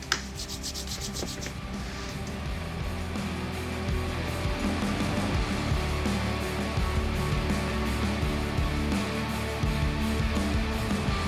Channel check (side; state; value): both; identical; correlation 1.00